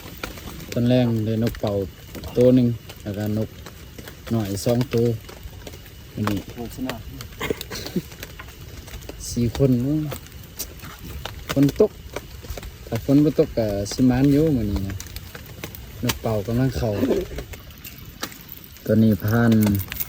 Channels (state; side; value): identical; both; correlation 1.00